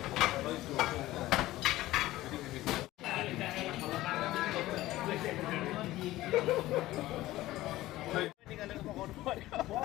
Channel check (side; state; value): right; quieter; 16.6 dB